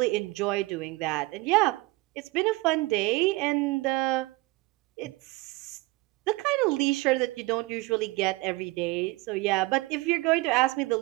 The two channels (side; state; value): left; quieter; 22.5 dB